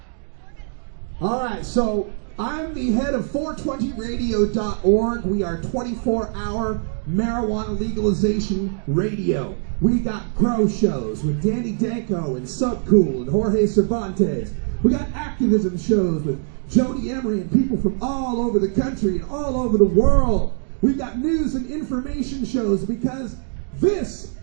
All right, so I'm the head of 420radio.org. We are 24-hour marijuana legalization radio. We got grow shows with Danny Danko and Subcool and Jorge Cervantes. We got activism shows with Jody Emery and people from all over the country and all over the world. We've got news and information shows because this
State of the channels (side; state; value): left; silent; digital silence